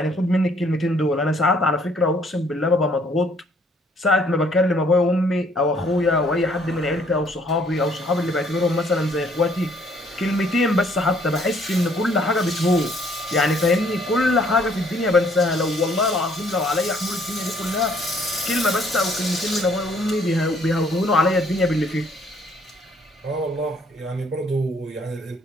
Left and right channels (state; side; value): normal; both; correlation 0.63